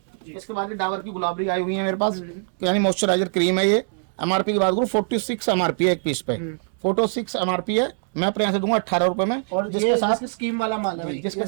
इसके बाद डाबर की गुलाबरी आई हुई है मेरे पास, यानी मॉइस्चराइजर क्रीम है ये। MRP की बात करूँ 46 MRP है एक पीस पे, 46 MRP है, मैं अपने यहाँ से दूंगा 18 रुपए में। और जिसके साथ स्कीम वाला माल है, जिसके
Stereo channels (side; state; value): left; silent; digital silence